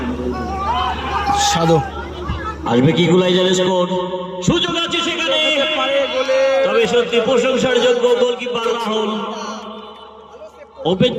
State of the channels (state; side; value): identical; both; correlation 1.00